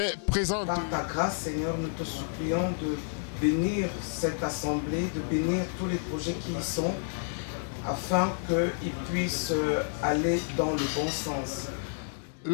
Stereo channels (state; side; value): silent; right; digital silence